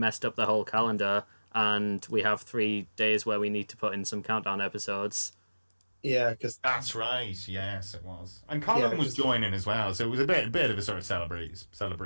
up the whole calendar, and we have 3 days where we need to put in some countdown episodes. Yeah, because that's right. Yes, it was. And Colin was joining as well, so it was a bit of a sort of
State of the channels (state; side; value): inverted; both; correlation -1.00